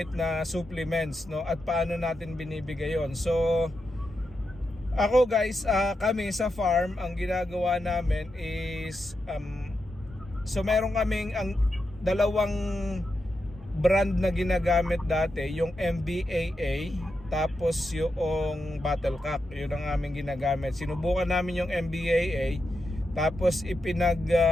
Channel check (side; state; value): both; normal; correlation 0.87